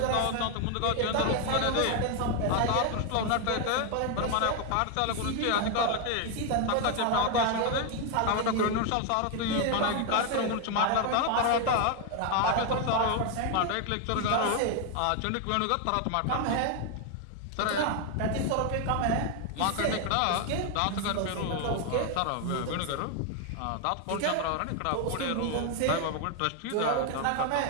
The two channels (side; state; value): both; different; correlation 0.01